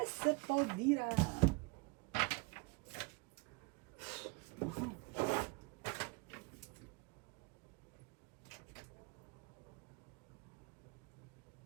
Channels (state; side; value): quieter; left; 29.8 dB